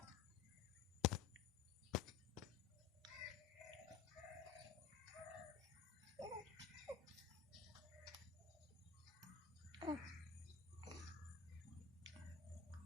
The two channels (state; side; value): quieter; right; 7.1 dB